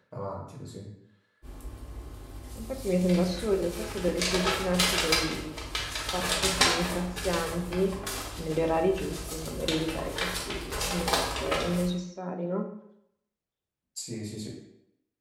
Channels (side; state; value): both; identical; correlation 1.00